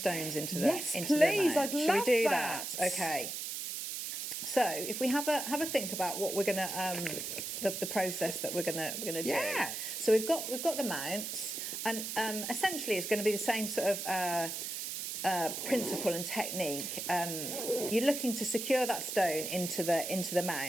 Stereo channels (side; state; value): right; noise; hiss, 5 dB below the sound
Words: into the Yes, into please, the I'd Should love we do that. Okay. So, if we have a think about what we're going to the process that we're going to do. Yes. So we've got the mounts, and essentially it's going to be the same sort of principle and technique. You're looking to secure that stone into the